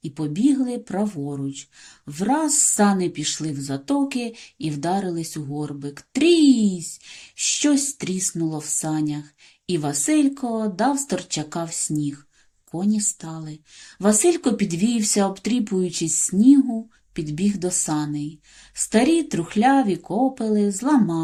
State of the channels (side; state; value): both; identical; correlation 1.00